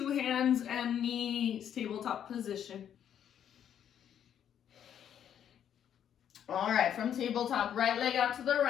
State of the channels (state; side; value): quieter; right; 9.4 dB